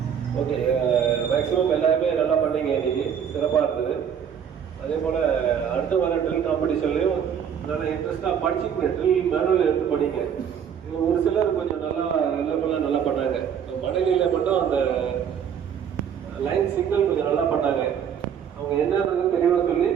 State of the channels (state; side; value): quieter; left; 8.1 dB